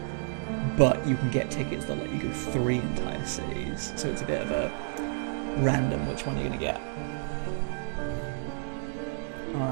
but you can get tickets that let you go 3 entire cities, so it's a bit of a random which one you're going to get.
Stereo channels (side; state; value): left; silent; 58 dB below the other